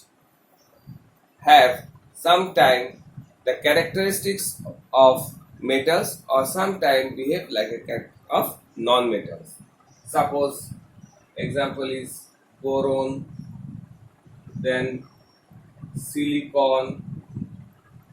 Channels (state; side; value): identical; both; correlation 1.00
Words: have sometime the characteristics of metals or sometime behave like a character of non-metals. Suppose example is boron, then silicon,